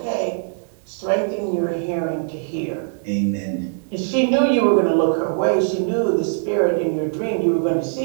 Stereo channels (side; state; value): left; silent; 62 dB below the other